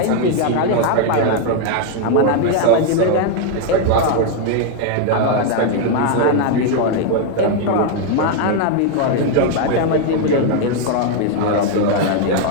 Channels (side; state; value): both; different; correlation 0.00